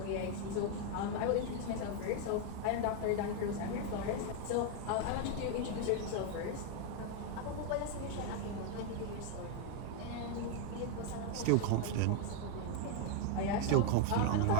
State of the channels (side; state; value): both; different; correlation 0.01